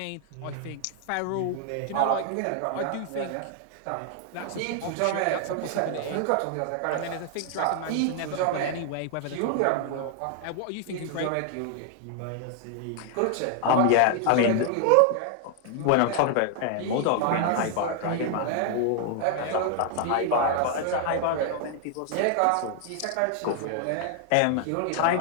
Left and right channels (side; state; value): both; different; correlation 0.00